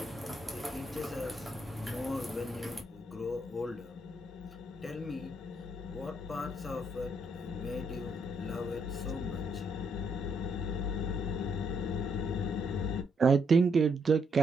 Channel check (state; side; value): normal; both; correlation 0.74